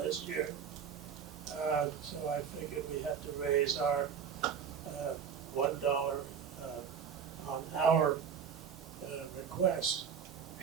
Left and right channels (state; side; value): quieter; left; 7.3 dB